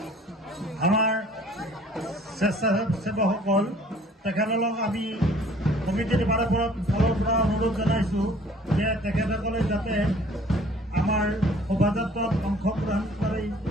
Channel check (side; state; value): both; normal; correlation 0.54